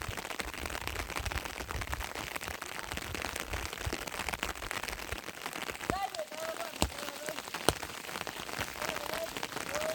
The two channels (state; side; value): identical; both; correlation 1.00